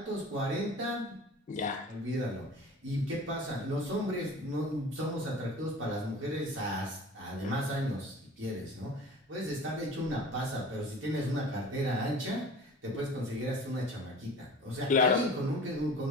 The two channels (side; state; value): both; normal; correlation 0.41